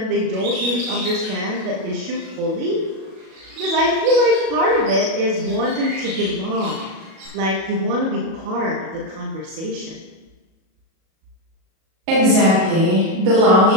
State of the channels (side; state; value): left; late; 37 ms